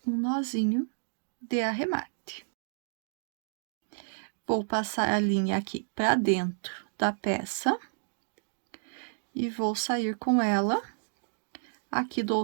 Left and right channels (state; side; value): silent; left; digital silence